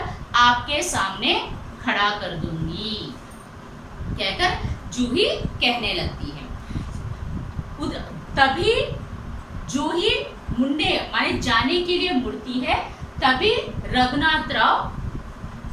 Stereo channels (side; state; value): both; identical; correlation 1.00